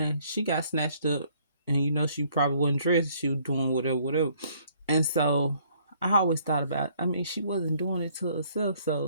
she got snatched up, and she probably wasn't dressed. She was doing whatever. And so I always thought about. I mean, she wasn't doing it to herself,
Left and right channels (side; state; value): both; inverted; correlation -0.63